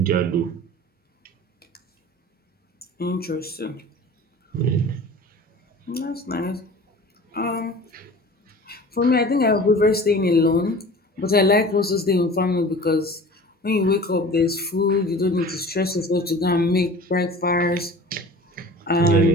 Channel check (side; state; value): both; normal; correlation 0.41